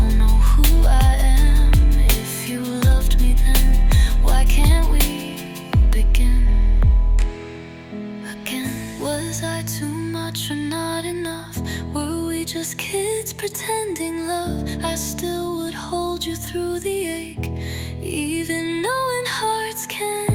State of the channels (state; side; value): identical; both; correlation 1.00